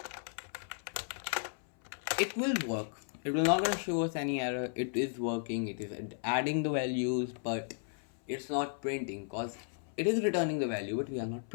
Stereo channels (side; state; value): right; silent; 55 dB below the other